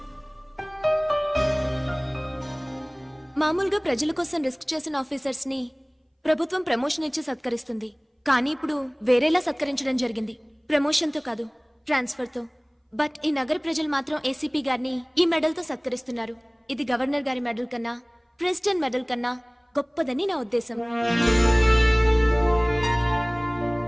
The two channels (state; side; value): identical; both; correlation 1.00